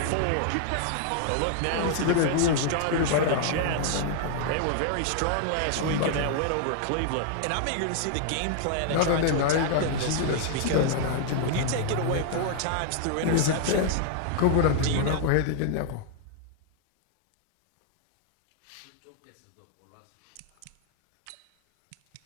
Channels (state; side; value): different; both; correlation 0.00